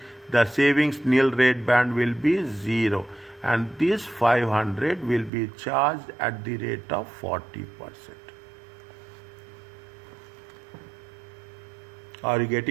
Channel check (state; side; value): drops out; left; at 5.3 s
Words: the savings nil rate band will be zero. And this 500 will be charged at the rate of 40%. Are you